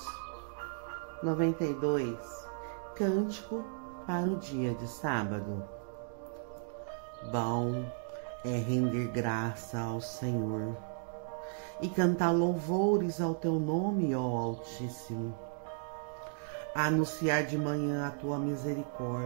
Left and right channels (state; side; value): silent; left; digital silence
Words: 92, Cântico para o dia de sábado. Bom é render graça ao Senhor e cantar louvores ao teu nome, ó Altíssimo. Anunciar de manhã a tua